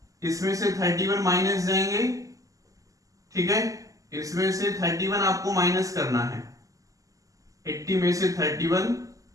इसमें से 31 माइनस जाएंगे। ठीक है, इसमें से 31 आपको माइनस करना है, 80 में से 31,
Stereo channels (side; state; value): left; late; 0.16 ms